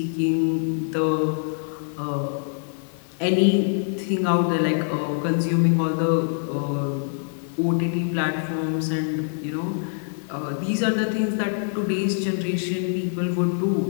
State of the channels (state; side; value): silent; right; 61 dB below the other